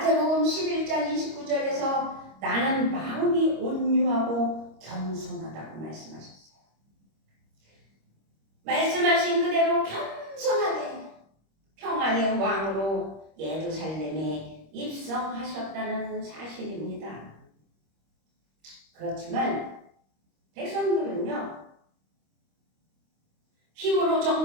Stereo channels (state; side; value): late; left; 25 ms